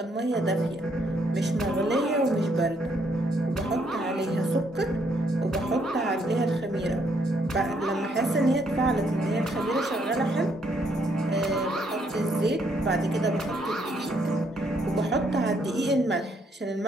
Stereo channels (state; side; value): normal; both; correlation 0.71